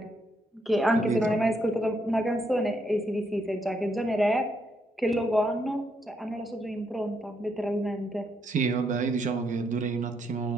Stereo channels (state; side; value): normal; both; correlation 0.76